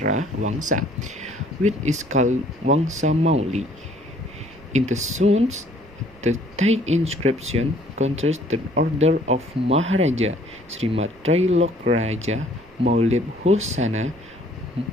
Wangsa, which is called Wangsa Mauli. In the Suns, the Thai inscription contrasts the order of Maharaja Srimat Trailokraja Maulid Husana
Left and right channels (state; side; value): noise; right; rumble, 26 dB below the sound